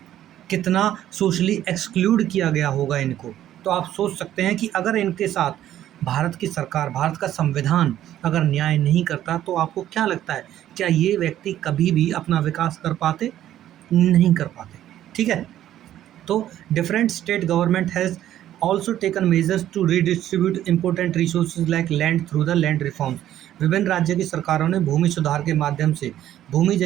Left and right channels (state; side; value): quieter; left; 12.2 dB